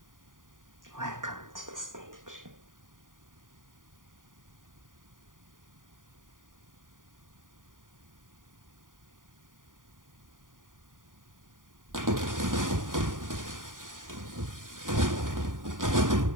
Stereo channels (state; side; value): late; left; 0.89 ms